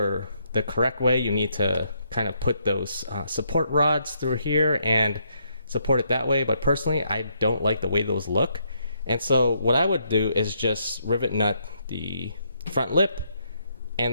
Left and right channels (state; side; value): inverted; both; correlation -0.75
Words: the correct way, you need to kind of put those support rods through here and support it that way. But personally, I don't like the way those look. And so what I would do is just rivet nut the front lip